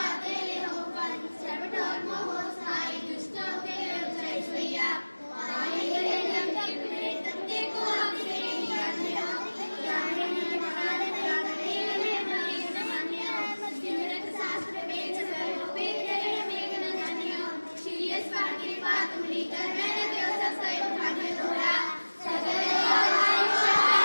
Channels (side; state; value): both; inverted; correlation -1.00